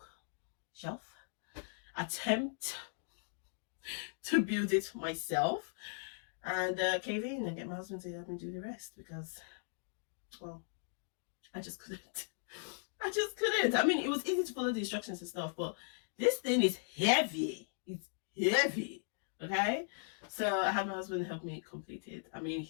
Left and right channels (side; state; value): right; silent; digital silence